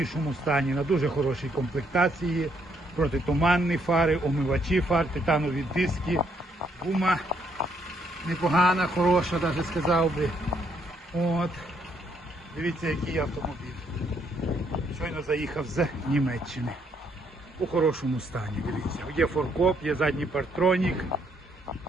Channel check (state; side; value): normal; both; correlation 0.72